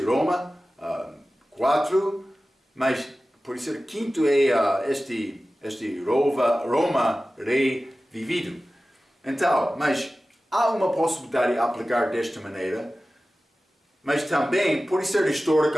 Roma 4, mas por ser quinto é este Roma rei vivido. Então, mas há uma possibilidade de aplicar desta maneira, mas também pode ser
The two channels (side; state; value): both; normal; correlation 0.96